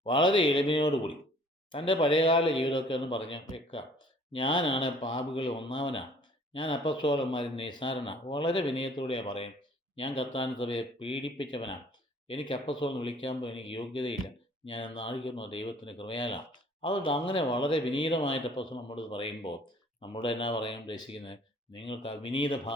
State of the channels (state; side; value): normal; both; correlation 0.55